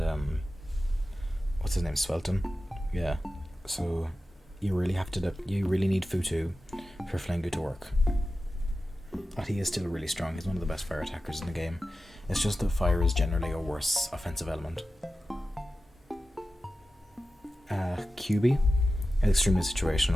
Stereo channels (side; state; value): both; normal; correlation 0.93